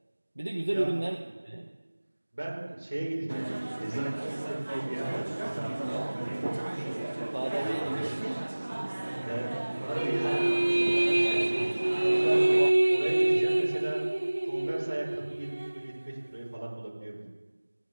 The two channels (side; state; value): both; inverted; correlation -1.00